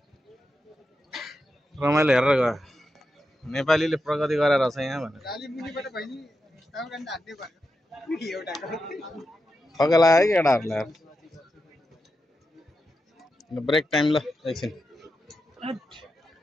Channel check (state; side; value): normal; both; correlation 0.88